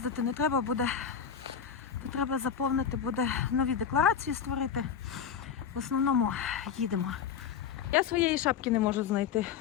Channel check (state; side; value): quieter; right; 7.6 dB